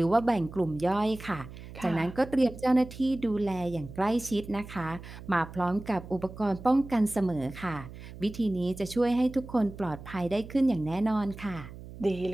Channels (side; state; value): right; noise; hum, 14 dB below the sound